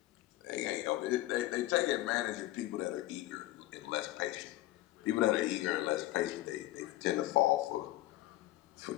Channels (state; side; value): quieter; right; 16.6 dB